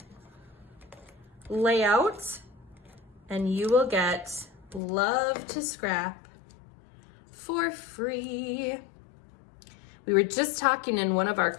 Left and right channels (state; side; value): drops out; right; at 4.8 s